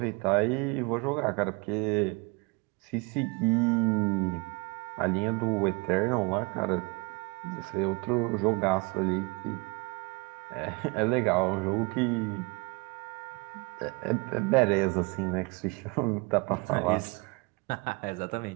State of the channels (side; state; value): left; quieter; 28.8 dB